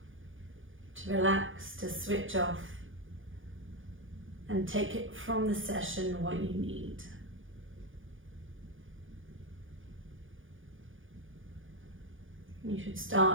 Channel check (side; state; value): left; late; 0.58 ms